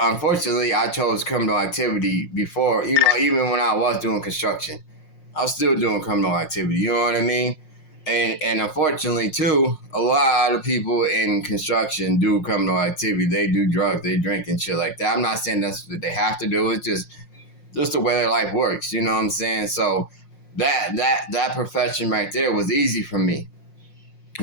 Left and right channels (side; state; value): right; late; 5.6 ms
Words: I chose criminal activity before. Even when I was doing construction. I was still doing criminal activity. You know what I mean? And unfortunately too, a lot of people in construction do criminal activity. They do drugs, they drink and shit like that. I'm not saying that's what they have to do. It's just the way their life works. You know what I'm saying? So that profession right there was easy for me.